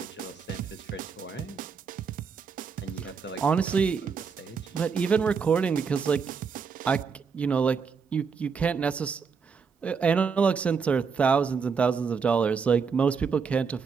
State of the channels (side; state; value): left; quieter; 5.8 dB